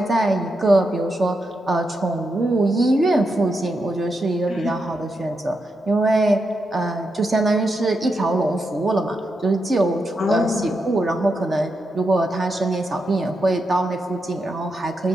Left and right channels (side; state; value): both; normal; correlation 0.85